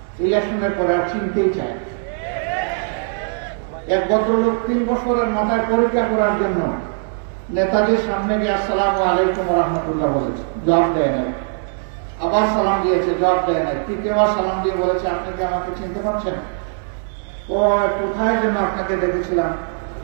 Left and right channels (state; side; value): silent; left; 66 dB below the other